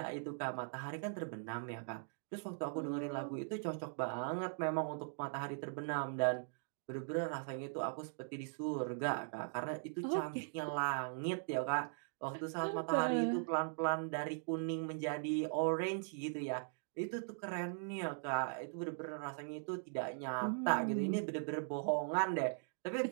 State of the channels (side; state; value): left; silent; digital silence